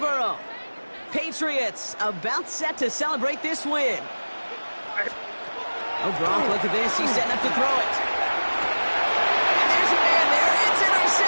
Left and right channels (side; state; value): both; inverted; correlation -1.00